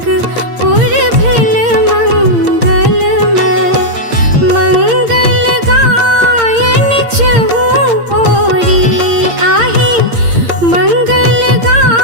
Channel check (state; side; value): late; left; 8.7 ms